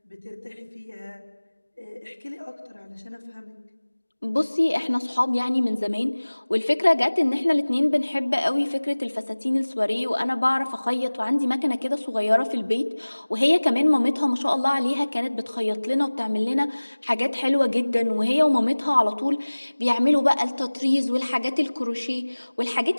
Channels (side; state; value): both; inverted; correlation -1.00